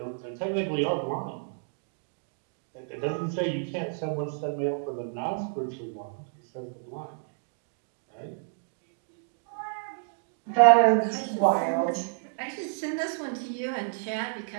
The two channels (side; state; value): left; silent; digital silence